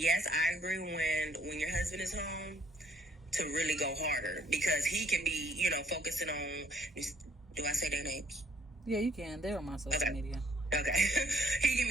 I agree when your husband is home, to really go harder, because he can be, focusing on, do I say their names? Yeah, you can. They're on my social media. Okay. He can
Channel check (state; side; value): normal; both; correlation 0.65